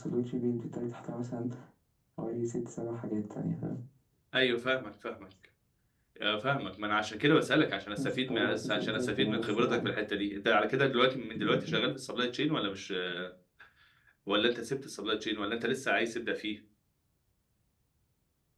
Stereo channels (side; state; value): both; identical; correlation 1.00